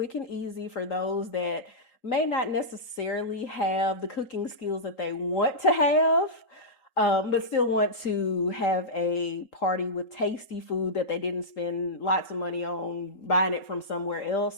and easy for those that may not necessarily have the cooking skills that they want to have, but still want to have a party with tasty food that they didn't spend lots of money on buying it from somewhere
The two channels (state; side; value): late; right; 3.8 ms